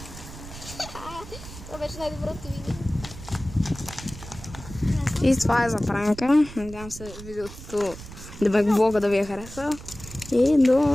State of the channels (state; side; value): noise; right; rumble, 14 dB below the sound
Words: Това беше най-доброто видео. И това е за пранка. Надявам се видеото, блога да ви е хареса. И